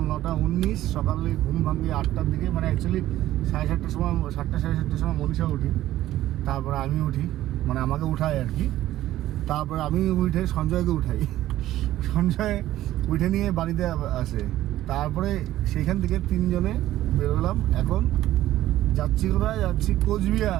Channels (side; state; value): left; quieter; 14.2 dB